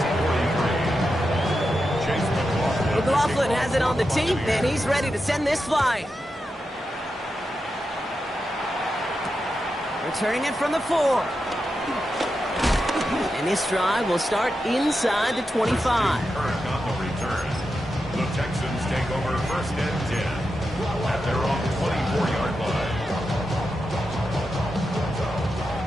McLaughlin has it on the tee, and he's ready to send this flying. Returning it from the 4. And this drive will start inside the 25. On the return, the Texans take over 1st and 10 at their own 24-yard line.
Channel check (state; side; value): normal; both; correlation 0.88